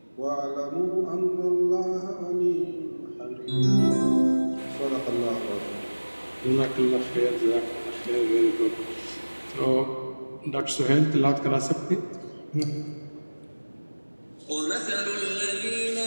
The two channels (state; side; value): inverted; both; correlation -1.00